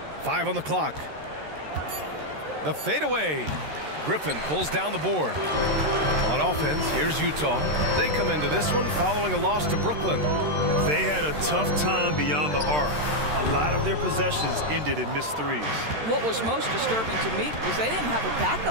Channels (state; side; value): late; left; 13 ms